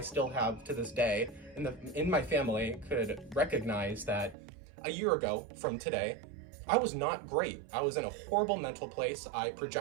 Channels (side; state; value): left; drops out; at 4.4 s